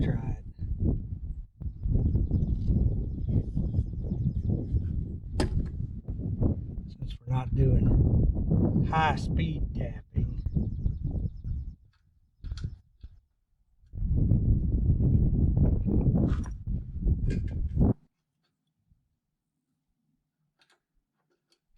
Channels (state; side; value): identical; both; correlation 1.00